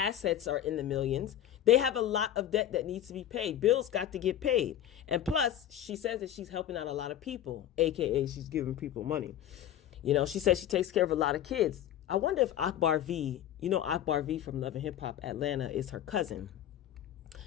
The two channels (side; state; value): right; quieter; 11.3 dB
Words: are in the millions. They have a lot of debt that needs to be paid. Bills got to get paid. And plus, she says that she's helping out a lot of people, aka she's giving people money. She says she takes care of a lot of kids. I wonder if Akbar V, Akbar V from Love and Hip Hop Atlanta is her cousin.